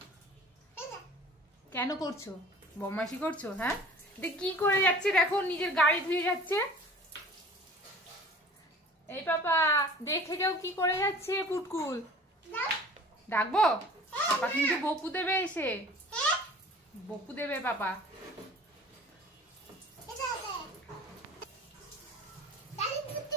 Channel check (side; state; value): both; normal; correlation 0.45